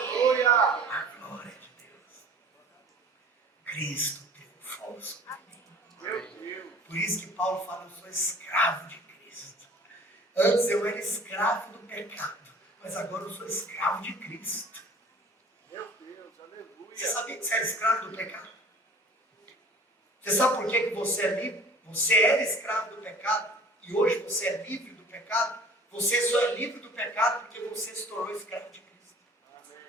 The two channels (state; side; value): normal; both; correlation 0.47